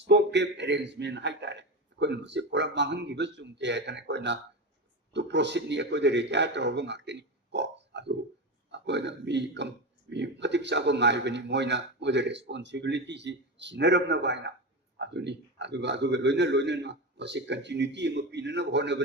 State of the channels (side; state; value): both; normal; correlation 0.20